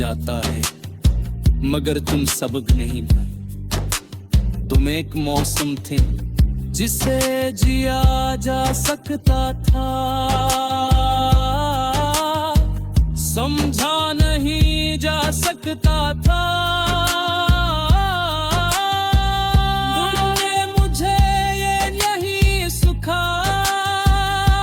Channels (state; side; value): identical; both; correlation 1.00